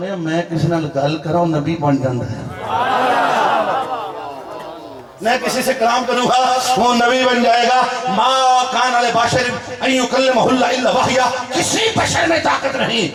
میں کسی نال گل کراں نبی بن جاندا ہے, میں کسی سے کلام کروں گا وہ نبی بن جائے گا. ما کان علی بشر ان یکلمہ اللہ الا وحیا, کسی بشر میں طاقت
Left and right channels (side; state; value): both; identical; correlation 1.00